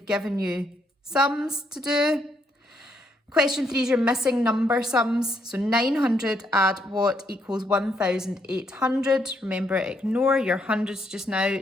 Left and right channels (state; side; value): normal; both; correlation 0.74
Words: given you sums to do. Question 3 is your missing number sums. So 900 add what equals 1,800. Remember, ignore your hundreds just now.